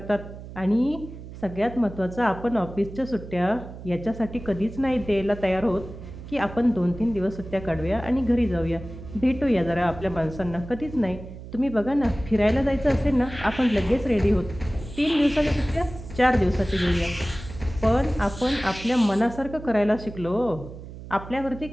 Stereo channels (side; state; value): right; noise; hum, 13 dB below the sound